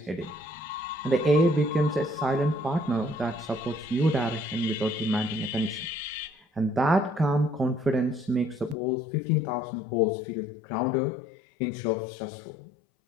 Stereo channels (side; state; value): right; drops out; at 8.8 s